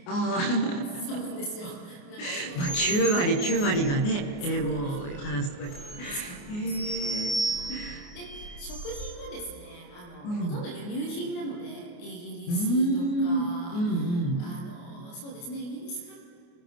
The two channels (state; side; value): late; right; 29 ms